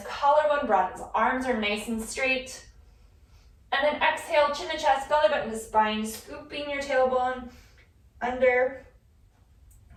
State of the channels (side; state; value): both; identical; correlation 1.00